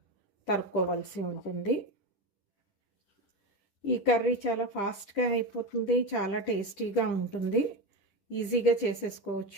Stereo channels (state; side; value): late; right; 10 ms